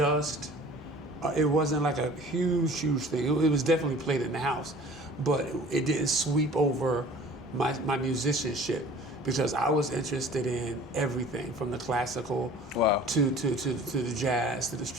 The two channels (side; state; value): both; normal; correlation 0.46